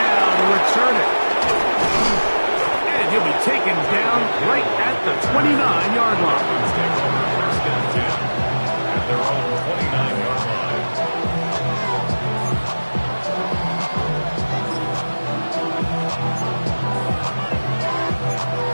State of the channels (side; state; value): both; inverted; correlation -1.00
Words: to return it. And he'll be taken down right at the 29-yard line. Their own 29-yard line.